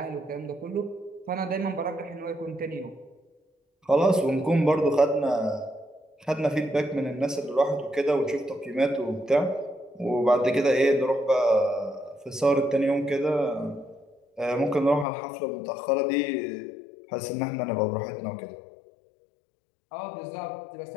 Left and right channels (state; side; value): drops out; right; at 15.1 s